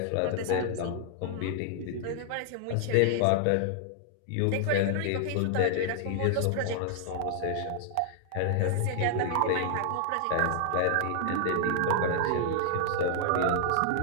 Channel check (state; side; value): different; both; correlation -0.01